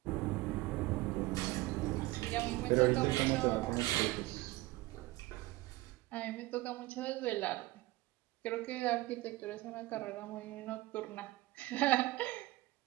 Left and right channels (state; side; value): quieter; left; 19.3 dB